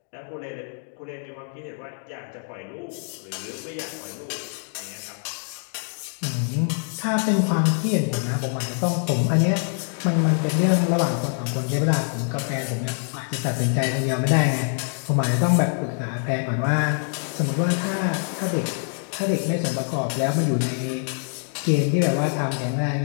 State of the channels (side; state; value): right; silent; 61 dB below the other